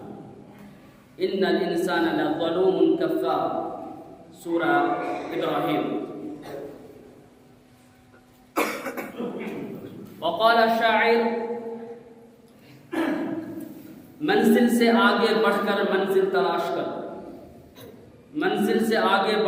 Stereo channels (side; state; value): both; identical; correlation 1.00